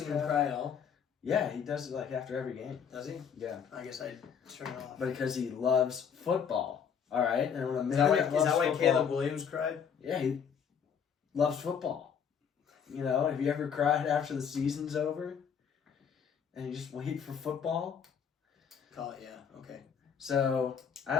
him cry at all? Yeah, he does it like after every game. Does he? Yeah. I guess I'd turn it off. But because he loves football. All right, and when a Is that why Caleb Williams cried? Yeah, he loves football. Have you ever cried after the season's over? And you just wait for football? Call it, yeah. Okay. So,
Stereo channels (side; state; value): right; quieter; 7.3 dB